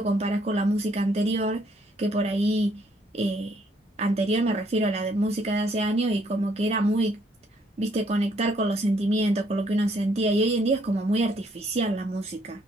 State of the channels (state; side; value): normal; both; correlation 0.68